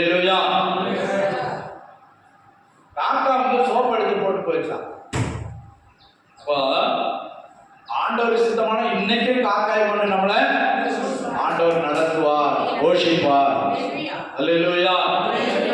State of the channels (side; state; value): both; identical; correlation 1.00